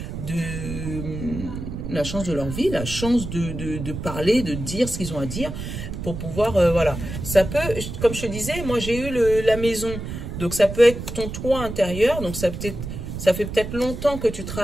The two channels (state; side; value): noise; right; rumble, 7 dB below the sound